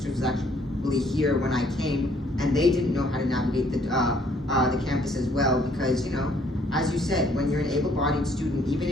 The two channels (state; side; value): normal; both; correlation 0.63